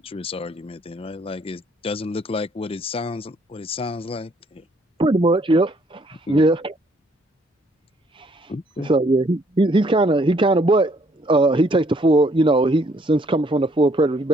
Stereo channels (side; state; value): both; normal; correlation 0.65